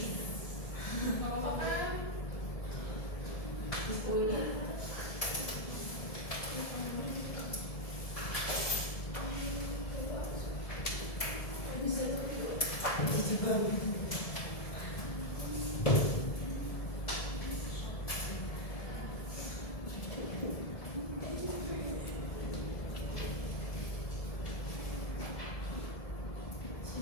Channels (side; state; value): right; late; 1.7 ms